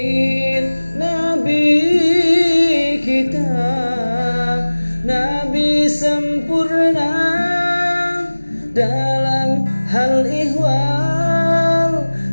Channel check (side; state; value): both; inverted; correlation -1.00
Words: Nabi kita, Nabi sempurna dalam hal ihwal,